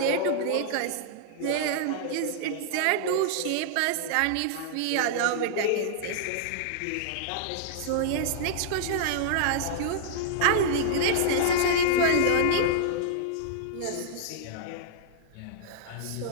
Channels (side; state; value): both; different; correlation -0.01